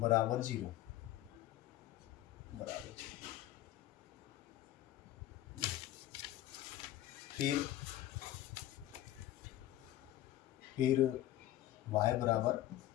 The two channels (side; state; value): right; quieter; 14.2 dB